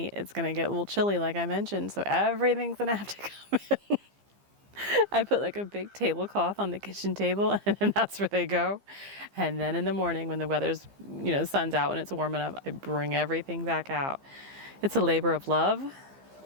it's gonna get a little chilly like I mentioned, so everything's gonna have to come in. I put a big tablecloth on the kitchen table and then that's where they go. And then in the morning when the weather's, the sun's out and it's warm enough, I bring everything back out. It's a labor of love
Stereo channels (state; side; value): late; left; 15 ms